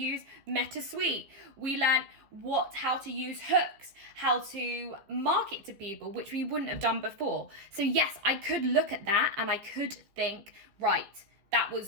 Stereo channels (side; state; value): left; late; 15 ms